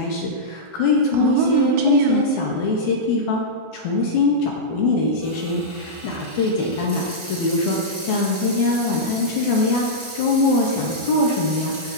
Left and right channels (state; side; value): late; left; 1.4 ms